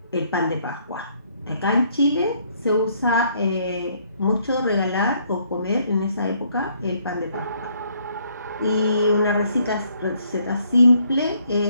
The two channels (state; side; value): inverted; both; correlation -0.67